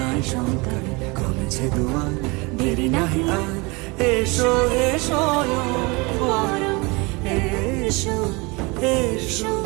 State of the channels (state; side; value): quieter; left; 26.6 dB